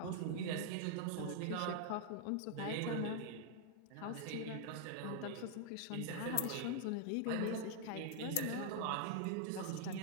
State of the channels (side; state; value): both; different; correlation 0.00